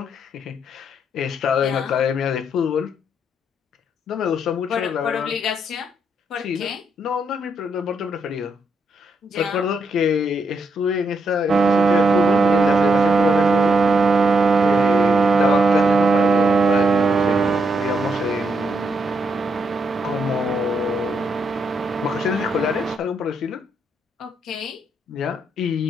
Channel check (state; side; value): normal; both; correlation 0.78